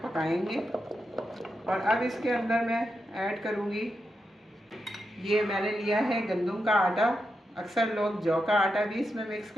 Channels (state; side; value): normal; both; correlation 0.86